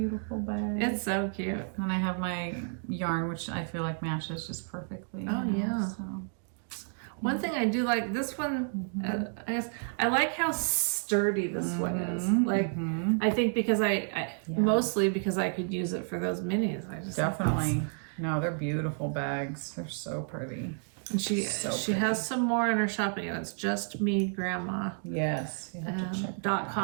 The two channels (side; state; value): left; silent; 57 dB below the other